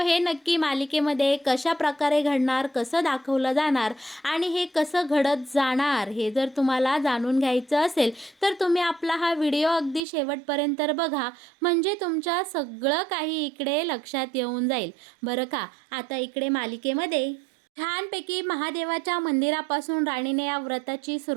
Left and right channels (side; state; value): left; drops out; at 10.0 s